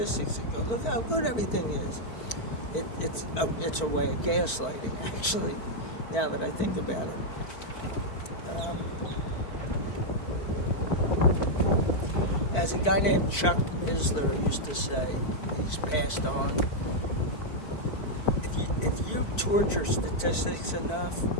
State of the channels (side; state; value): right; late; 4.5 ms